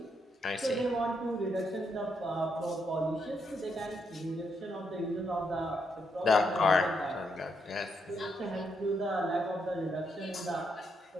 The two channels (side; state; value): both; normal; correlation 0.78